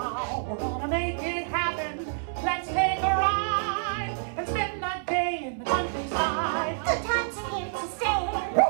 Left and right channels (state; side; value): silent; left; 60 dB below the other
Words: We're gonna make it happen. Let's take a ride and spend the day in the countryside. Good times are here to stay.